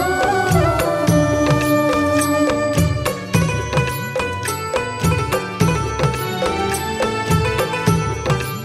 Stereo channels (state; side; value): identical; both; correlation 1.00